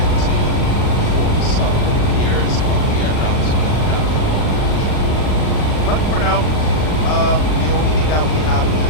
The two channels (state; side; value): late; right; 39 ms